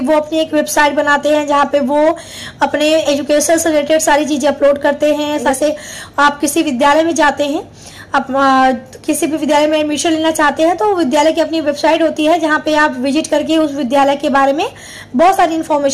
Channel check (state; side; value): identical; both; correlation 1.00